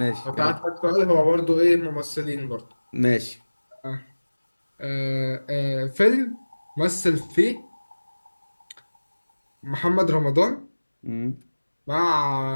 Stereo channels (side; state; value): both; inverted; correlation -1.00